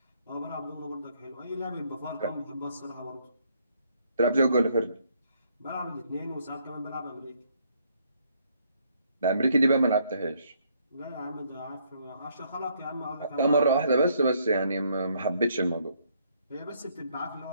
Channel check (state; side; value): inverted; both; correlation -0.69